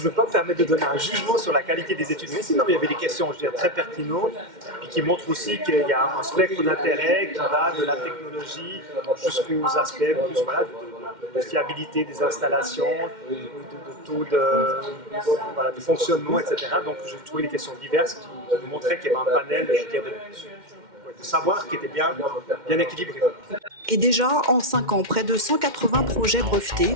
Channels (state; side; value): late; left; 2.1 ms